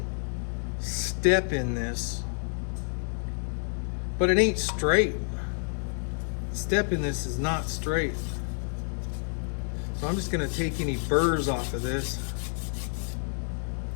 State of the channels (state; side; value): silent; right; 59 dB below the other